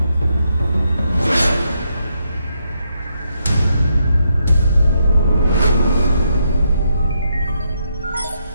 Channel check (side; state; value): both; inverted; correlation -0.79